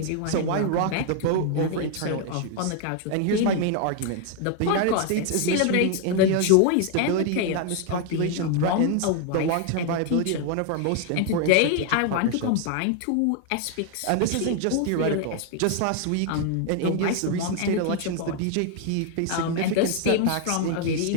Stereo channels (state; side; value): different; both; correlation 0.00